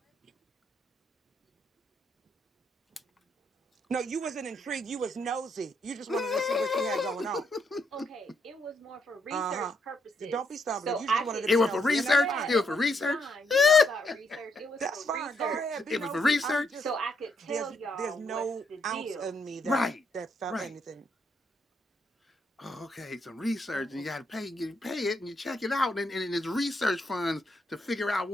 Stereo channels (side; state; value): both; normal; correlation 0.76